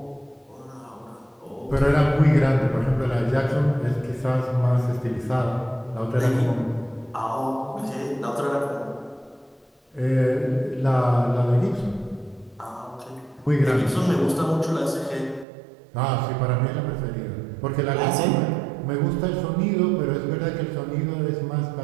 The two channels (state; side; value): drops out; left; at 15.5 s